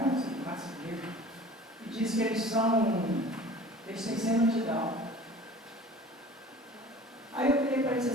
assim, 4 meses. E disse que eles têm síndrome de Down. Aí eu falei para ele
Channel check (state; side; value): normal; both; correlation 0.44